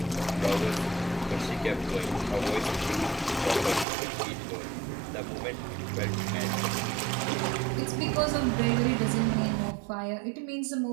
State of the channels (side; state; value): left; drops out; at 3.9 s